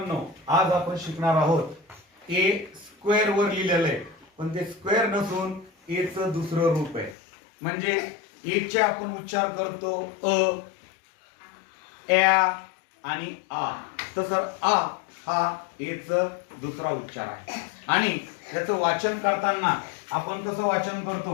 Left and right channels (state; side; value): drops out; right; at 7.2 s